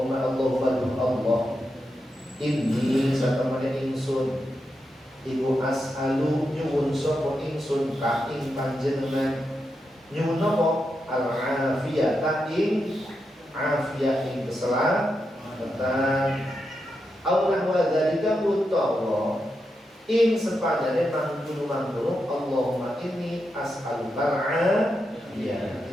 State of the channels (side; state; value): both; normal; correlation 0.86